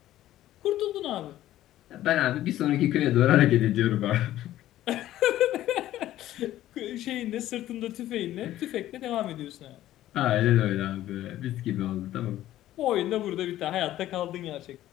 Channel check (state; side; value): quieter; right; 13.8 dB